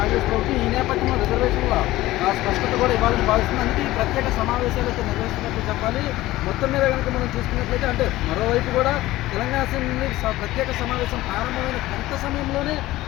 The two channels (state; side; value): quieter; right; 16.9 dB